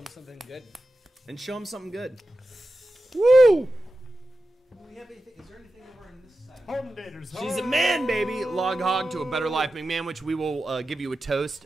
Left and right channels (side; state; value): both; normal; correlation 0.92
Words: something good. And show him something good. Woo! Do we have anything? Is there anything over on this side? She's a man, baby. Log hog to a better life, McMahon, which we will give you a toast